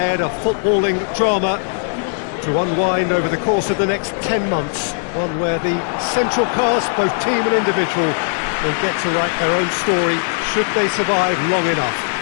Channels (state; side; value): silent; right; digital silence